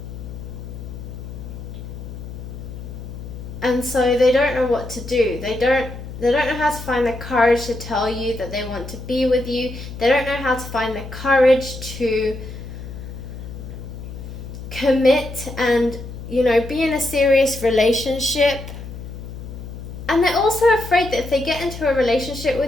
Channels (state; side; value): noise; left; hum, 11 dB below the sound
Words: so they don't know what to do. They don't know how to find the courage to tell you that they want to be with you. They don't know how to find the courage to commit and, be in a serious relationship. And they're also afraid that if they get into a relationship